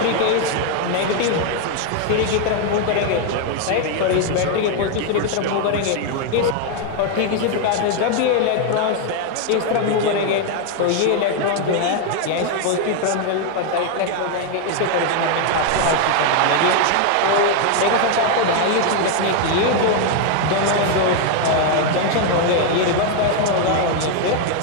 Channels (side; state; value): both; different; correlation 0.01